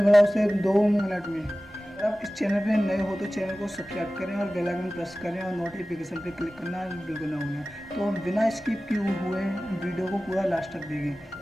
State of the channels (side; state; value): both; normal; correlation 0.96